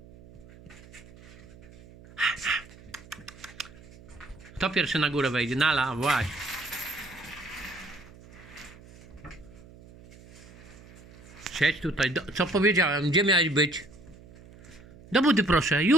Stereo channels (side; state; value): right; noise; hum, 21 dB below the sound